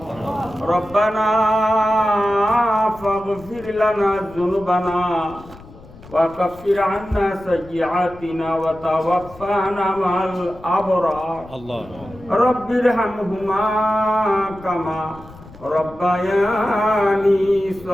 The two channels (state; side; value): noise; left; rumble, 20 dB below the sound